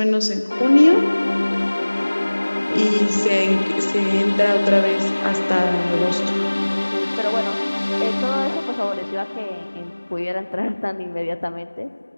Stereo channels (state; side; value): inverted; both; correlation -1.00